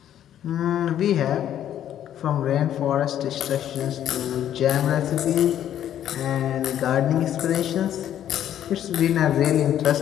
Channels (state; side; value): quieter; right; 10.8 dB